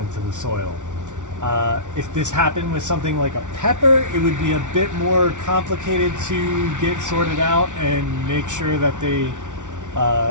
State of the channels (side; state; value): left; late; 0.86 ms